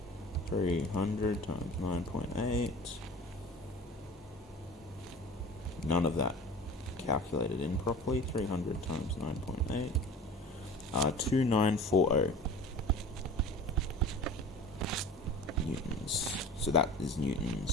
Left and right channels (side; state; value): both; normal; correlation 0.39